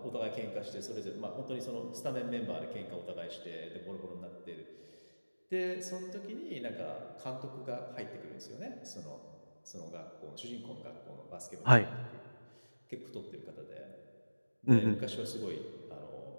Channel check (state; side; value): inverted; both; correlation -1.00